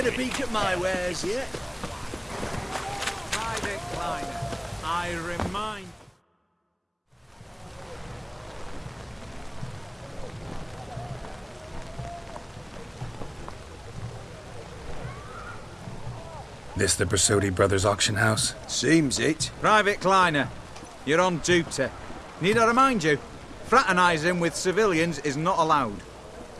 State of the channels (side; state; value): both; identical; correlation 1.00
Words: a peek at my wares yet? Private Kleiner, I remind... This the Brasotti Brothers auction house? Seems it. Private Kleiner, you're on duty. Need I remind you, fraternising with civilians is not allowed.